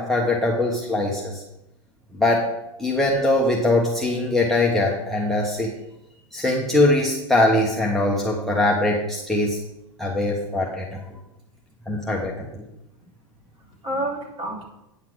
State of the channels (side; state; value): both; normal; correlation 0.49